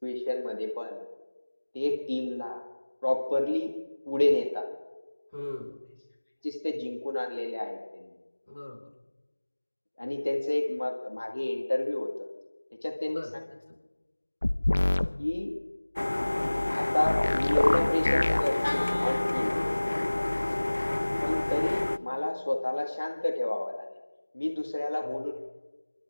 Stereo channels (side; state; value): both; inverted; correlation -1.00